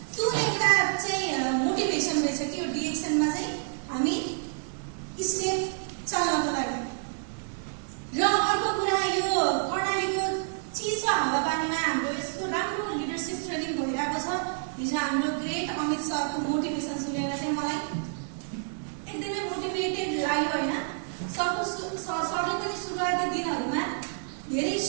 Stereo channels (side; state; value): left; silent; 59 dB below the other